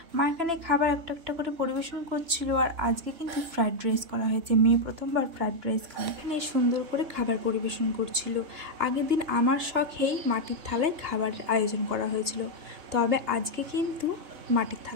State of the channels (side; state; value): left; late; 3.2 ms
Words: মা এখানে খাবার একটা একটা করে পরিবেশন করছিল। আর আজকে কিন্তু ফ্রাইড রাইস করা হয়েছে, মেয়ে প্রথমবার ফ্রাইড রাইস খায়। এখানে সুন্দর করে খাবার পরিবেশন করছিল। আগের দিন আমার শখেই মাটির থালায় খাবারের আয়োজন করা হয়েছিল, তবে আজকে কিন্তু মাটির